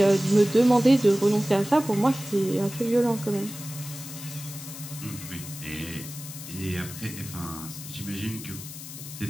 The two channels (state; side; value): noise; left; hiss, 12 dB below the sound